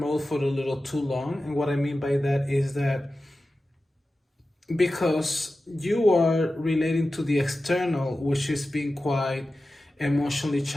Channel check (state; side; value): normal; both; correlation 0.94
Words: for a little too long. And what I mean by that is that because you are relating to the external, which is being quite emotionally